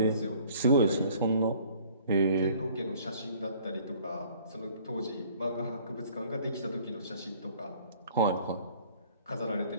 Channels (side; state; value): both; inverted; correlation -0.55